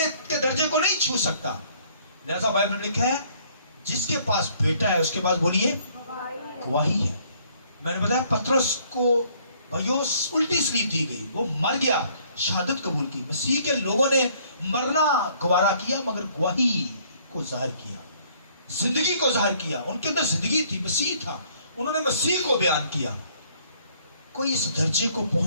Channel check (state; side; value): inverted; both; correlation -0.62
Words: کے درجے کو نہیں چھو سکتا۔ لہذا بائبل میں لکھا ہے جس کے پاس بیٹا ہے اس کے پاس بولیے گواہی ہے۔ میں نے بتایا پترس کو بھائیو الٹی سلیپ دی گئی، وہ مر گیا، شہادت قبول کی۔ مسیح کے لوگوں نے مرنا گوارا کیا مگر گواہی کو ظاہر کیا، زندگی کو ظاہر کیا۔ ان کے اندر زندگی تھی، مسیح تھا، انہوں نے مسیح کو بیان کیا۔ کوئی اس درجے کو